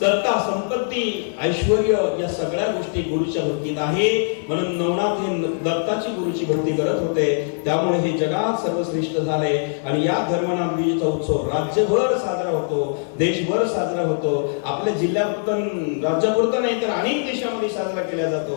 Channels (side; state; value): right; silent; digital silence